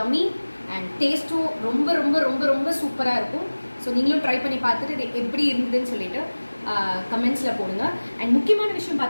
and டேஸ்ட்டும் ரொம்ப ரொம்ப ரொம்ப ரொம்ப சூப்பராக இருக்கும். ஸோ நீங்களும் ட்ரை பண்ணி பார்த்துட்டு இது எப்படி இருந்ததுன்னு சொல்லிட்டு கமெண்ட்ஸில் போடுங்க. அண்ட் முக்கியமான விஷயம்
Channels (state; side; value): inverted; both; correlation -1.00